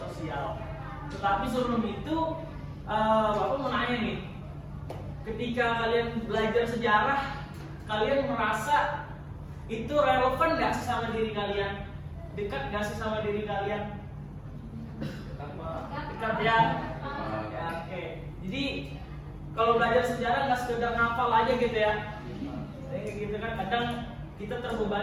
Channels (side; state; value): both; identical; correlation 1.00